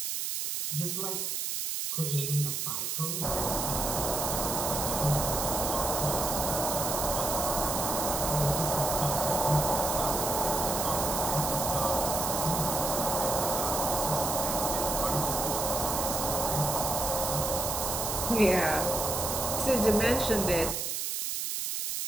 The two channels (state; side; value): noise; right; hiss, 2 dB below the sound